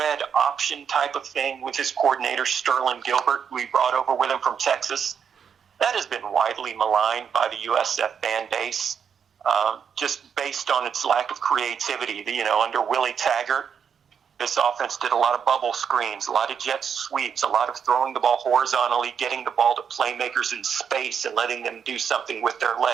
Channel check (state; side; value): quieter; left; 7.3 dB